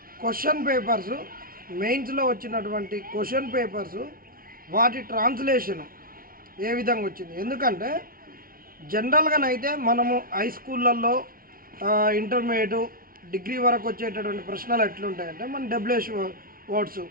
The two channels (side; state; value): left; late; 0.42 ms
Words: క్వశ్చన్ పేపర్స్, మెయిన్స్లో వచ్చినటువంటి క్వశ్చన్ పేపర్స్, వాటి ట్రాన్స్లేషన్ ఏ విధంగా వచ్చింది. ఎందుకంటే జనరల్గానైతే మనము హై స్కూళ్ళల్లో ఇంటర్మీడియట్ డిగ్రీ వరకు వచ్చేటటువంటి ప్రశ్నలు ఎట్లుంటాయంటే మన డబ్ల్యూహెచ్ వర్డ్స్